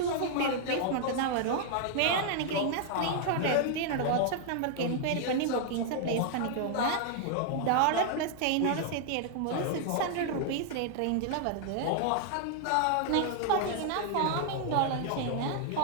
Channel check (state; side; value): different; both; correlation 0.00